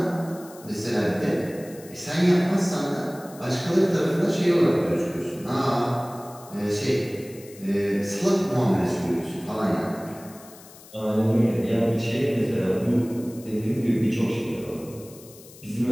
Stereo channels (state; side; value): noise; left; hiss, 21 dB below the sound